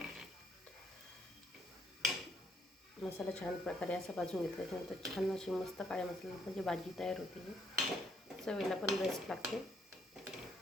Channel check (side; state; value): both; normal; correlation 0.70